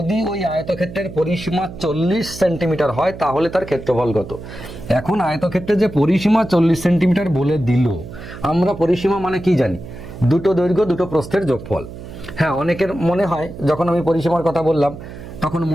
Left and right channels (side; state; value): right; noise; hum, 13 dB below the sound